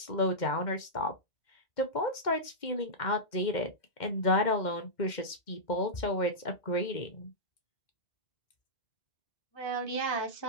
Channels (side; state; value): right; late; 2.1 ms